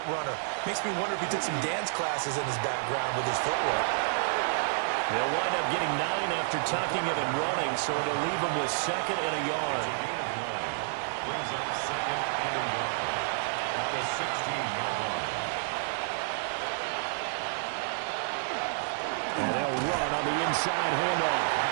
runner. Makes me wonder if he took some dance classes in his background with his footwork. They'll wind up getting 9 after tucking it and running, so it'll leave them with second and a yard. Brings up second and a yard at the 16-yard line. And they'll run on the inside handoff.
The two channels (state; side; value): silent; left; digital silence